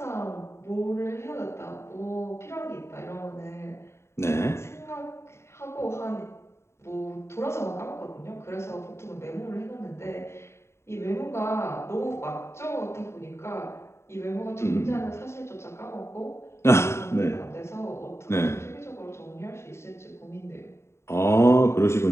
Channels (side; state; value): right; late; 0.13 ms